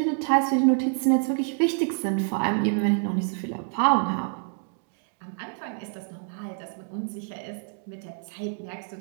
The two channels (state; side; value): silent; left; 60 dB below the other